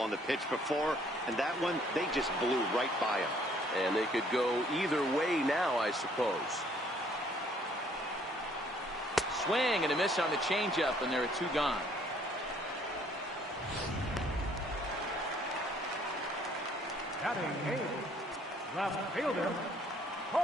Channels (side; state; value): both; normal; correlation 0.62